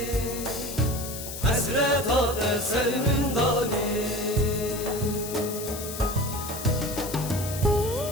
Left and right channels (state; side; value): noise; left; hiss, 9 dB below the sound